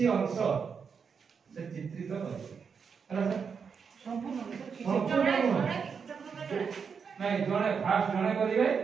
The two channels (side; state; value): left; quieter; 6.1 dB